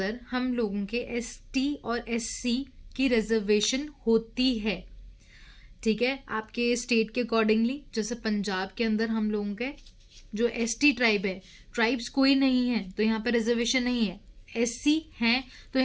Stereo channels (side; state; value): both; identical; correlation 1.00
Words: हम लोगों के ST और SC की रिजर्वेशन होती है, ठीक है, आपके स्टेट के अकॉर्डिंगली। जैसे पंजाब के अंदर हम लोगों के जो ST ट्राइब है, ट्राइब्स कोई नहीं है तो यहाँ पे रिजर्वेशन नहीं है, SC हैं तो